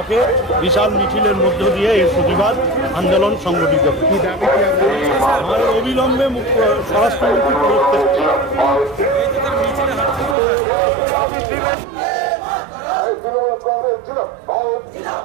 বিশাল মিছিলের মধ্য দিয়ে এই প্রতিবাদ আন্দোলন সংগঠিত হবে। আমাদের অবিলম্বে স্বরাষ্ট্রমন্ত্রী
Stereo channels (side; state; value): left; drops out; at 10.4 s